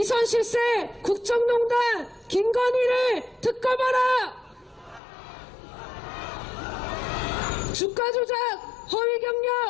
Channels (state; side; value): drops out; right; at 5.0 s